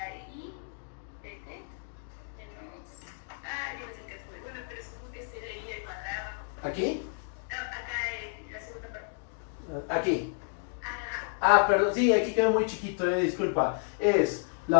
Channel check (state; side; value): silent; right; 57 dB below the other